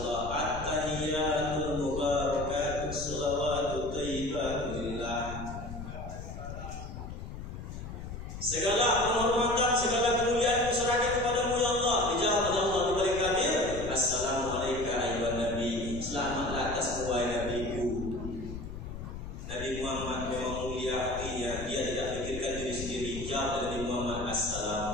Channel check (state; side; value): noise; left; rumble, 9 dB below the sound